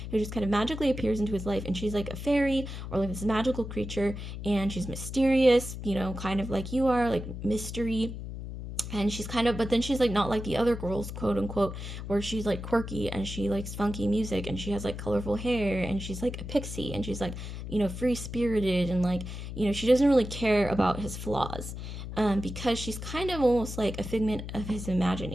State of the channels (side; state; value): left; noise; hum, 8 dB below the sound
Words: who just kind of magically appears into his life, and she's like a fairy or like this magical creature, and she's mysterious, you know, kind of like you are, like mystery. And she's kind of, but then she's like not like the other girls, quote unquote, where she's like quirky and she likes funky music and she has like colorful hair and she's like a pixie and she's like, you know, free spirited, and like, you know, she doesn't really care about his flaws, because she's kind of almost like a figment of his